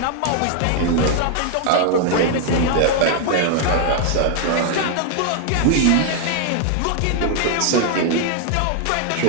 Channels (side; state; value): both; different; correlation 0.00